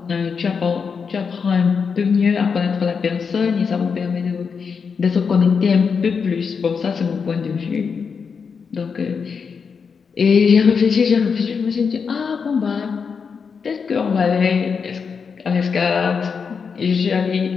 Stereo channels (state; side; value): quieter; right; 5.8 dB